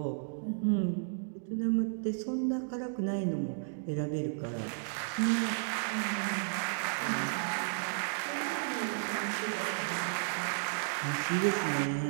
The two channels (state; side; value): silent; left; digital silence